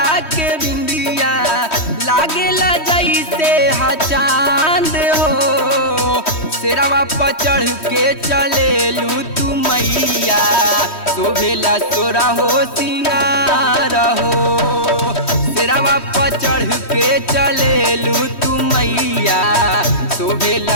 के बिंदिया, लागेला जैसे हा चांद हो। शेरवा पर चढ़ के चलेलू तू मैया, शोभेला तोरा हो सिंगार हो। शेरवा पर चढ़ के चलेलू तू मैया,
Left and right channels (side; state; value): right; late; 3.1 ms